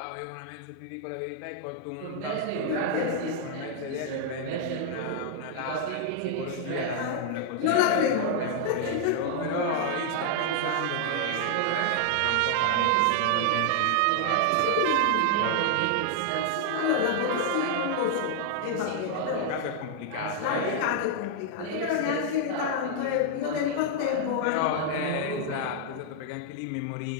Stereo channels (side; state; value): both; different; correlation -0.01